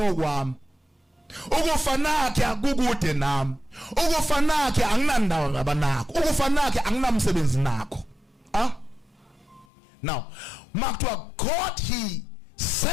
okwami. Ukufa nakhe akukude nami. Ukufa nakhe anginandawo ngabanakho. Ukufa nakhe anginamsebenzi nakho. Now makuthiwa God he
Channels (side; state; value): right; drops out; at 9.7 s